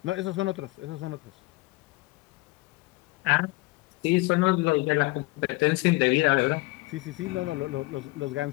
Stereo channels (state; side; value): quieter; right; 22.7 dB